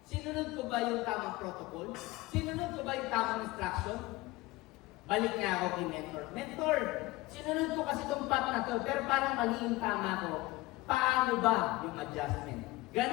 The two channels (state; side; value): quieter; right; 20.2 dB